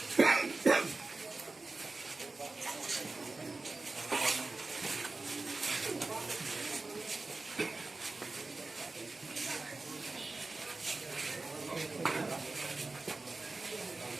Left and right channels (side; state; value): left; quieter; 3.5 dB